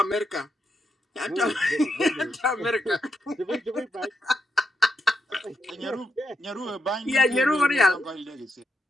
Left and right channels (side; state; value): both; normal; correlation 0.82